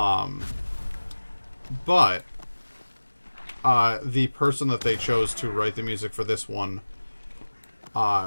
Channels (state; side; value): inverted; both; correlation -1.00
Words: But the person that they chose to write the music for this one